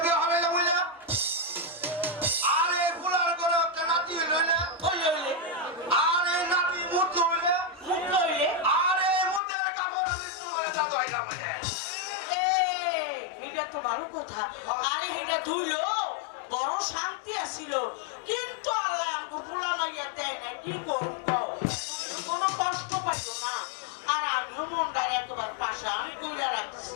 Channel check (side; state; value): right; drops out; at 9.4 s